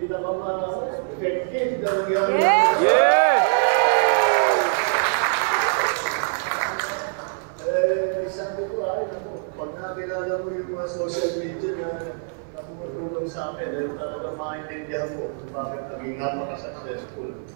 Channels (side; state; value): left; silent; 58 dB below the other